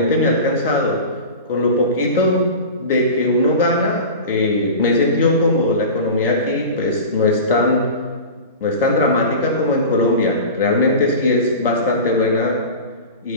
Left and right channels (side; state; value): both; inverted; correlation -0.32